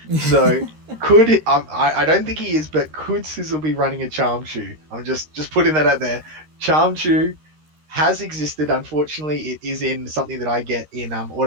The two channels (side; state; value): left; late; 13 ms